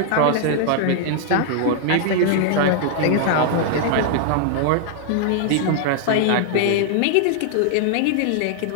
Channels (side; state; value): both; different; correlation 0.00